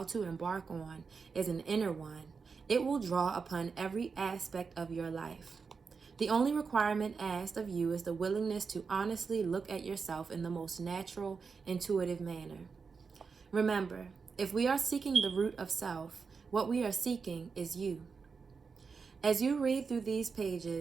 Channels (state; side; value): quieter; left; 5.2 dB